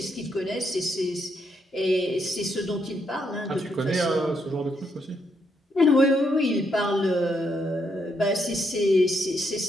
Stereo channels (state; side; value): normal; both; correlation 0.77